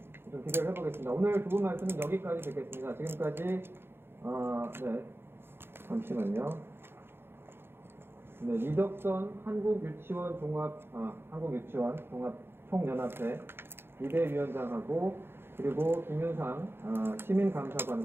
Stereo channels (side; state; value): left; late; 0.11 ms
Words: 좀 기대를 해보겠습니다. 오늘 두 분 말씀은 여기까지 듣겠습니다. 지금까지 네, 잠시만요. 네, 이덕선 한국유치원 종합총연합회 이대위원장하고 그리고 김윤상